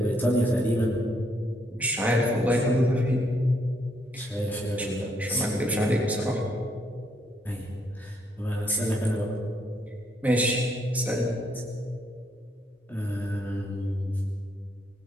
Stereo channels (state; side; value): normal; both; correlation 0.73